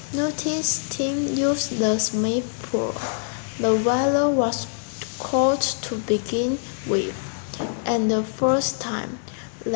Nutty's team used the Smith pool. The weather was cold to begin with, and the first time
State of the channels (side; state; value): right; silent; digital silence